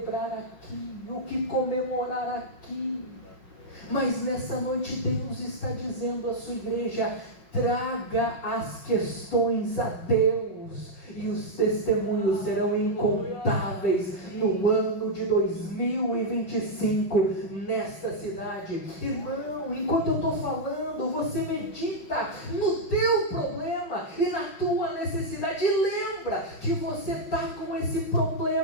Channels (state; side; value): late; right; 5.8 ms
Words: aqui, o que comemorar aqui. Mas nessa noite Deus está dizendo à sua igreja: traga as questões a Deus, e os testemunhos serão incontáveis no ano de 2025 nesta cidade. Irmão, enquanto eu estou falando, você medita no teu problema e na tua necessidade, e lembra que você está com esse